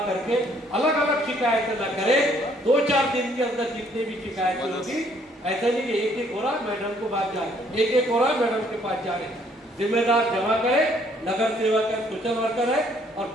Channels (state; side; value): normal; both; correlation 0.64